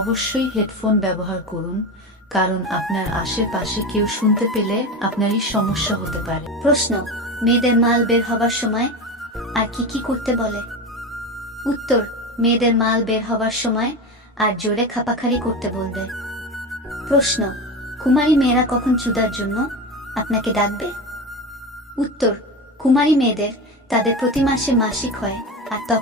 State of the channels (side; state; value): both; normal; correlation 0.23